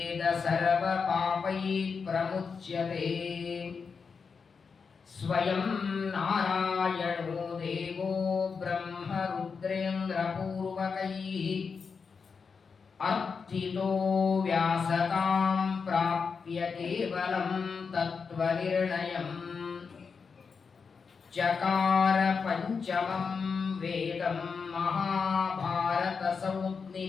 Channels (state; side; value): quieter; right; 5.4 dB